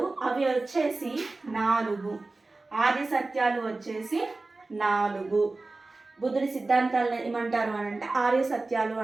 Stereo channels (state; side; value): quieter; left; 3.3 dB